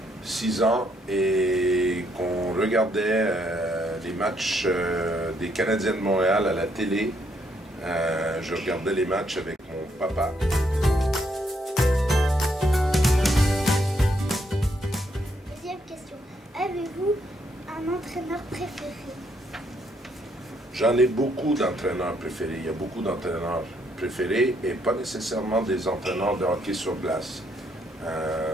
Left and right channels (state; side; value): normal; both; correlation 0.73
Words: 6 ans, et qu'on regardait les matchs des Canadiens de Montréal à la télé. Je regardais les matchs avec mon papa. Deuxième question. Avez-vous un entraîneur préféré? J'en ai beaucoup d'entraîneurs préférés. Il y a beaucoup d'entraîneurs préférés et pas nécessairement des entraîneurs de hockey sur glace.